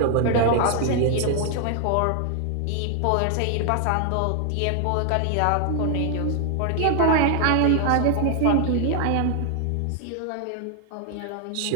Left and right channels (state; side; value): different; both; correlation 0.00